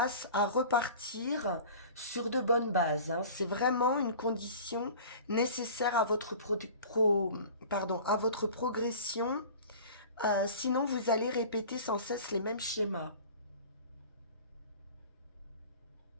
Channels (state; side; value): inverted; both; correlation -0.41